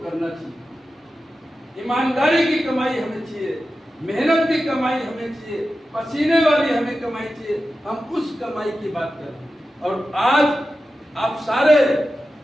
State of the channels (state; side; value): normal; both; correlation 0.92